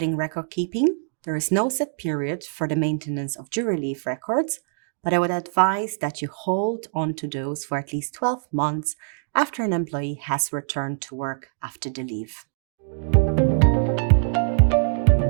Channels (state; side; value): silent; left; digital silence